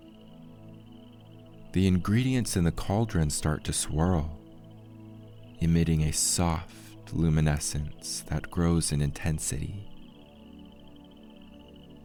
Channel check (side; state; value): both; identical; correlation 1.00